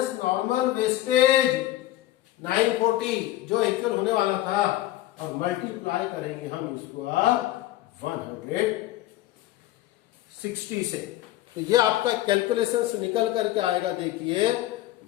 नॉर्मल वेस्टेज 940 जो एक्चुअल होने वाला था, और मल्टीप्लाई करेंगे हम इसको 160 से। तो ये आपका कैलकुलेशन से निकल करके आएगा देखिए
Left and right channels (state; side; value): quieter; right; 15.3 dB